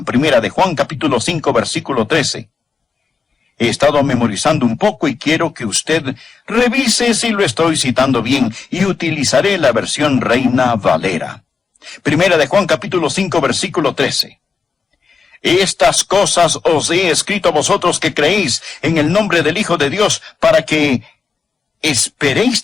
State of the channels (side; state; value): right; quieter; 5.2 dB